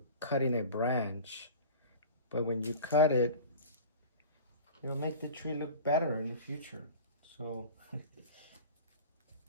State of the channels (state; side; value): inverted; both; correlation -0.37